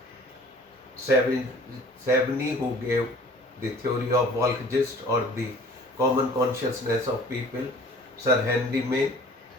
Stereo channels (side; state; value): both; normal; correlation 0.49